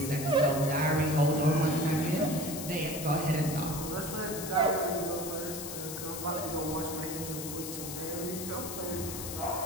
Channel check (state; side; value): noise; left; hiss, 7 dB below the sound